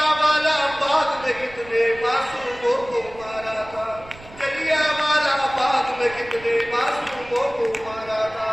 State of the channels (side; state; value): right; noise; rumble, 20 dB below the sound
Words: बाग में कितने मासूमों को मारा था, जलियांवाला बाग में कितने मासूमों को मारा था।